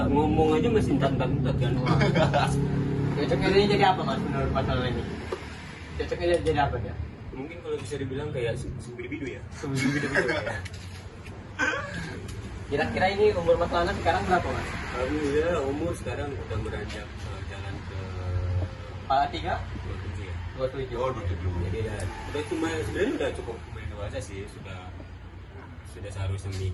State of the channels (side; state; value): both; identical; correlation 1.00